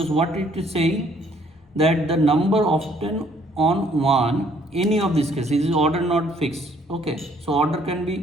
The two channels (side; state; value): both; normal; correlation 0.63